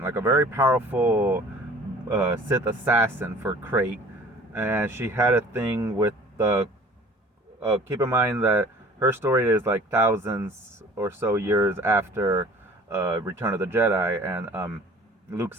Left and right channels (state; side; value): normal; both; correlation 0.49